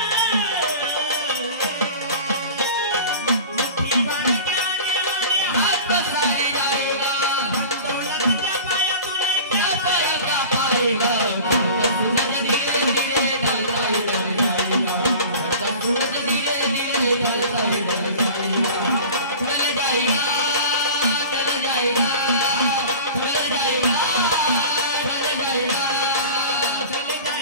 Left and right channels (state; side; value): inverted; both; correlation -0.38